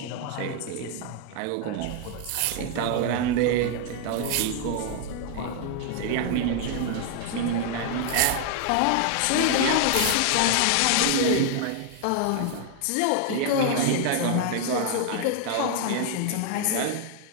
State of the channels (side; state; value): both; different; correlation 0.00